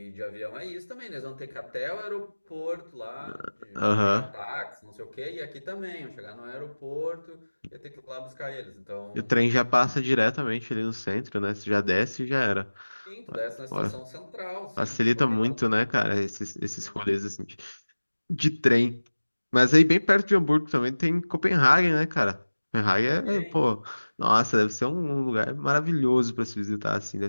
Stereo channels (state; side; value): inverted; both; correlation -1.00